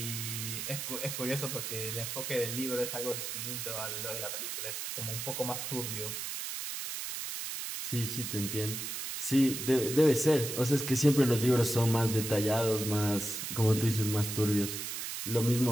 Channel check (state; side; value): noise; right; hiss, 5 dB below the sound